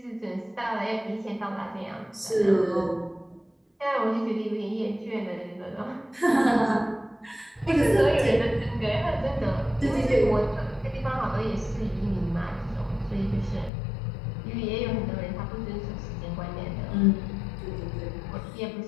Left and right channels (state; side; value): drops out; right; at 13.7 s